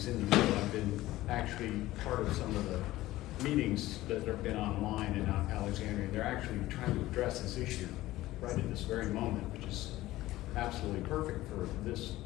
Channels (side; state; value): right; quieter; 16.6 dB